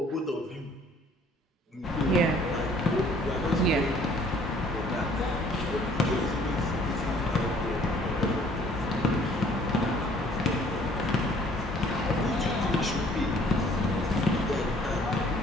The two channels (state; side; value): normal; both; correlation 0.57